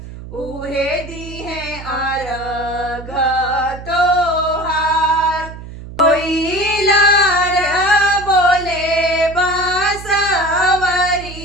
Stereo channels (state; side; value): noise; right; hum, 13 dB below the sound